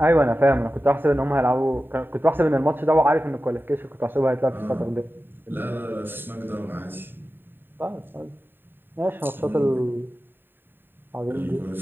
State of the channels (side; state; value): left; late; 0.097 ms